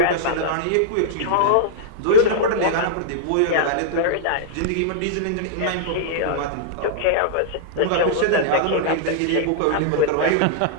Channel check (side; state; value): both; different; correlation -0.02